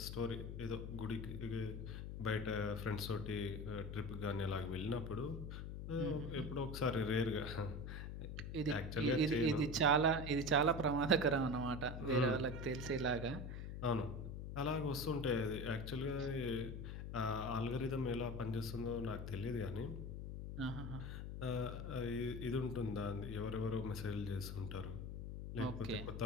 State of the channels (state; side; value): noise; left; hum, 6 dB below the sound